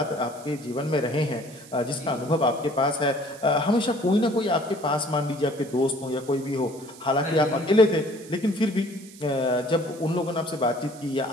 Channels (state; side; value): noise; right; hiss, 20 dB below the sound